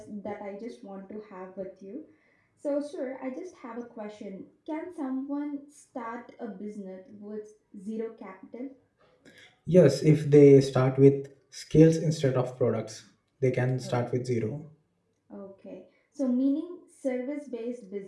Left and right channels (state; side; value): identical; both; correlation 1.00